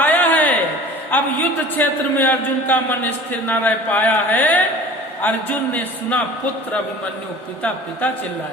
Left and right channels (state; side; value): normal; both; correlation 0.42